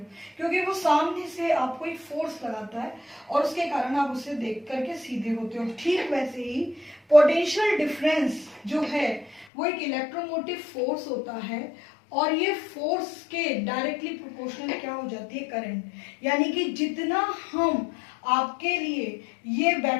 क्योंकि वो सामने से आपको एक फोर्स लगाता है और उसके कारण आप उसे देख करके सीधे होते हो। ठीक वैसे ही पोटेंशियल डिफरेंस जो है वो एक इलेक्ट्रोमोटिव फोर्स होता है और ये फोर्स के डायरेक्टली प्रोपोर्शनल क्या हो जाती है? करंट। यानी कि जितना हम आपके लिए ये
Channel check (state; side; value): drops out; right; at 9.5 s